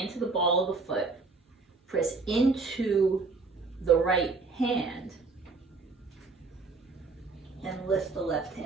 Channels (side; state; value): left; quieter; 4.0 dB